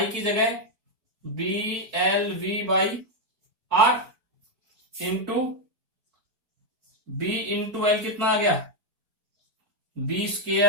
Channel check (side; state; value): left; late; 4.5 ms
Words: की जगह B L V by R into B into L कितना आ गया, B